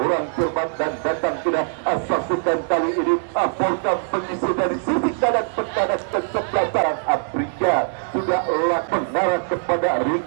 cermat dan datang tidak saksikan kali ini Porgam mengisi dari sisi kanan pertahanan kesebelasan Afrika sudah lakukan mengarah kepada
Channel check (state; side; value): silent; left; 64 dB below the other